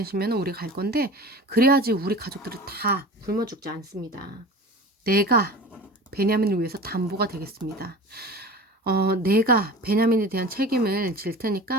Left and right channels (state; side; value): normal; both; correlation 0.37